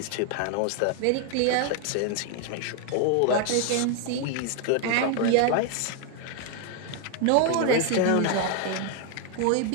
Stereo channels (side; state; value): both; different; correlation 0.00